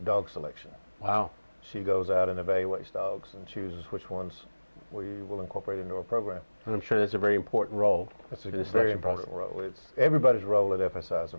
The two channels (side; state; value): both; inverted; correlation -1.00